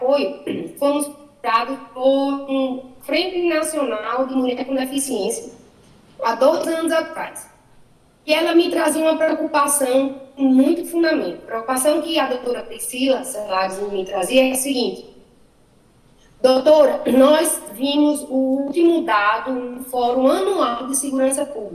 fomos dados por um Frente Nacional de Mulher com Deficiência há 2 anos atrás. E ela me trazia uma preocupação com muito fundamento. A preocupação que a doutora Priscila Celares me trazia é a seguinte: doutora, nós vimos o último dado no Fórum Anual de Segurança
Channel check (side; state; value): both; identical; correlation 1.00